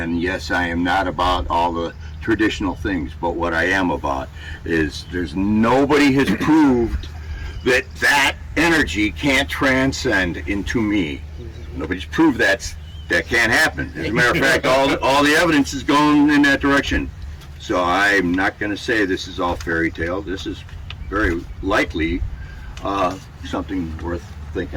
yes, I am not about all the traditional things, but what I am about is nobody has proved that energy can't transcend into me. Nobody's proved that can't happen. As a matter of fact, all the evidence is going in that direction. So I'm not going to say this is all fairy tale. This is very likely something worth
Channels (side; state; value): both; identical; correlation 1.00